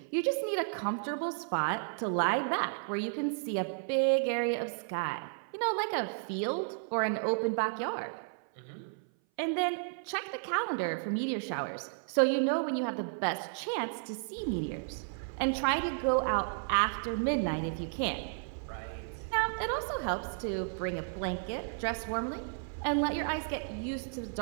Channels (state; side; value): silent; left; 56 dB below the other